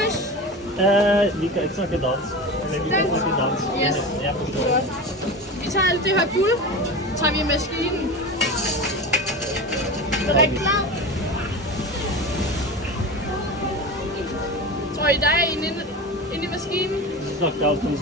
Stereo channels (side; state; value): both; normal; correlation 0.28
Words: Vi kan ikke snakke dans. Eller vi kan snakke dans. Yes. Jeg forstår. Vi tager alt det her guld, tager vi i maskinen. Er det klar? Tror I, der er en inde i maskinen? Du